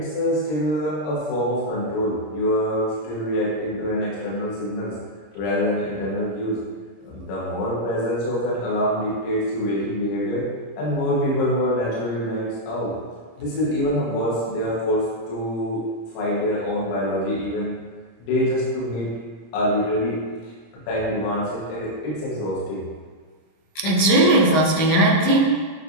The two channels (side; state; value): right; late; 26 ms